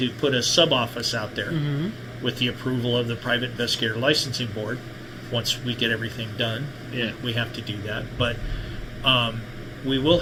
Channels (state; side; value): identical; both; correlation 1.00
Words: put a sub-office out there with the approval of the Private Investigator Licensing Board. Once we get everything done, we have to do that. But we will